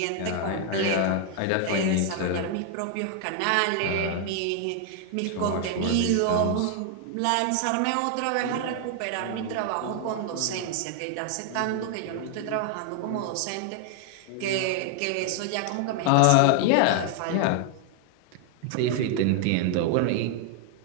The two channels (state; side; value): different; both; correlation 0.00